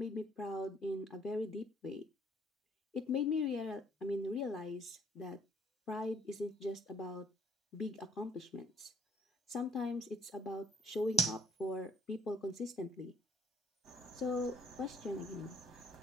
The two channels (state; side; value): normal; both; correlation 0.60